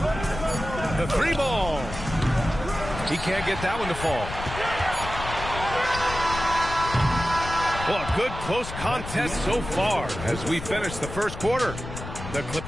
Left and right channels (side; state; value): left; noise; rumble, 9 dB below the sound